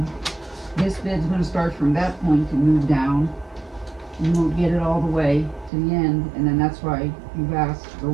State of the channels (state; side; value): drops out; left; at 5.7 s